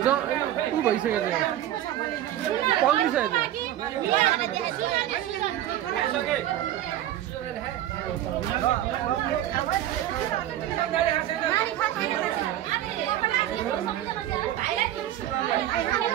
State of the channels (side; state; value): left; quieter; 12.7 dB